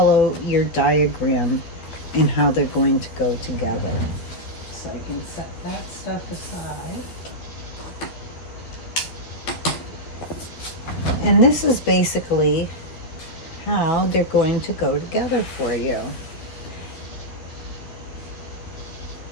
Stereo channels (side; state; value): right; late; 12 ms